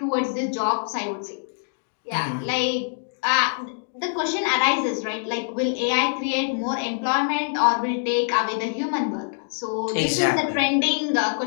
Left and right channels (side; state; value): right; silent; digital silence